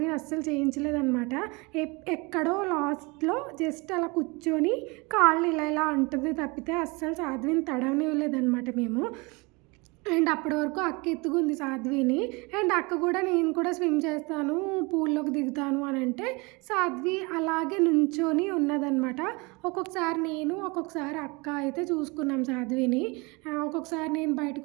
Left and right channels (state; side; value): quieter; left; 27.1 dB